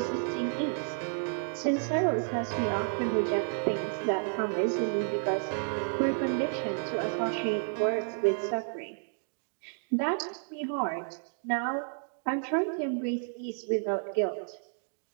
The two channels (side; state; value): left; silent; digital silence